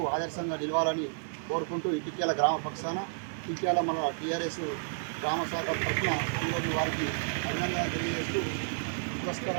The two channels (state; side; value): silent; left; 57 dB below the other